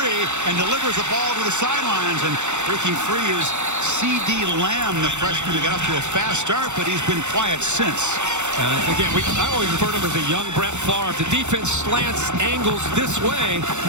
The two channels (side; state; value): left; late; 0.84 ms